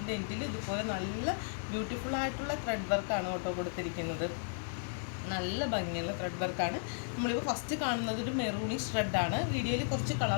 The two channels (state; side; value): silent; right; 55 dB below the other